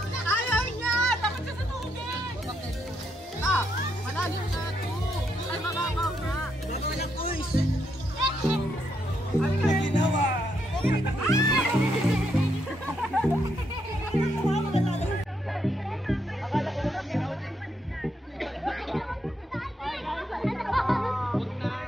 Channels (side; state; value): both; normal; correlation 0.78